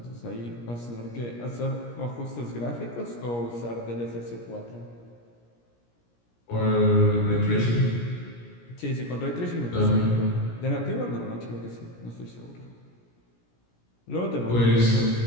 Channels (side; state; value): right; late; 17 ms